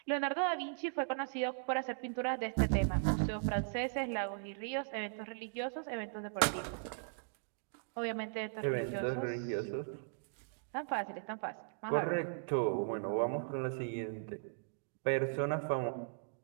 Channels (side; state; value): left; silent; digital silence